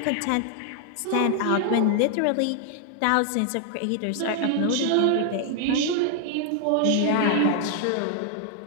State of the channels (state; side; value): different; both; correlation 0.00